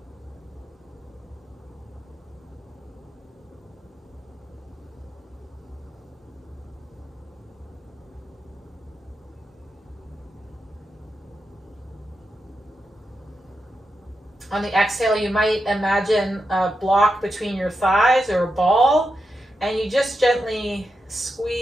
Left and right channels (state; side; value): normal; both; correlation 0.87